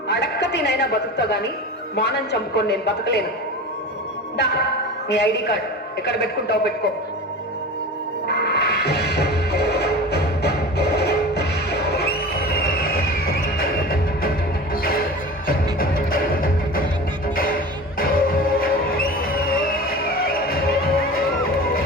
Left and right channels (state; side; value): normal; both; correlation 0.34